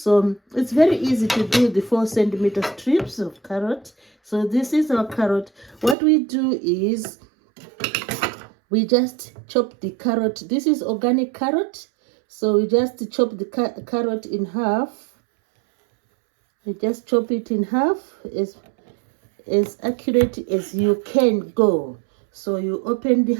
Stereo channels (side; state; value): left; drops out; at 6.0 s